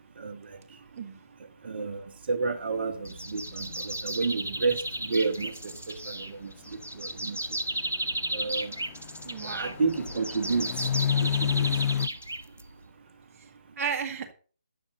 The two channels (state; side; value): inverted; both; correlation -0.68